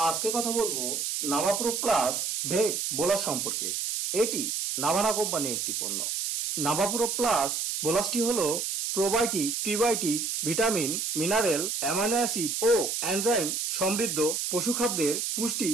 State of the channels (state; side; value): noise; right; hiss, 1 dB below the sound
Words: আজকে কথা বলবো নাভাপ্রো প্লাস ভেট বোলাস সম্পর্কে। এটি নাভানা কোম্পানির একটি পণ্য। নাভাপ্রো প্লাস বোলাসটি হলো probiotic, prebiotic, vitamin, mineral, amino acid ও এনজাইম সমৃদ্ধ পশুখাদ্যের পুষ্টি